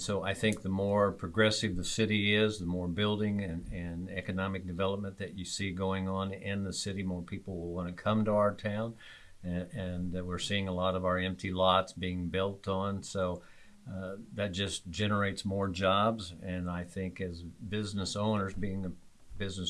I think the more progressive the city is, the more building and economic development that you see going on in the city, more people will want to come to our town. And we're seeing a lot of our empty lots being built on. So that just generates more jobs. And I think as business owners, being a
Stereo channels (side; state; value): both; identical; correlation 1.00